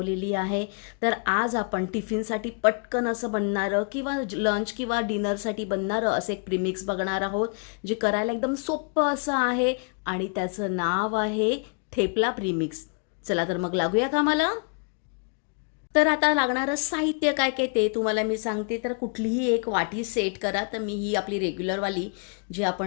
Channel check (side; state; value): right; quieter; 37.7 dB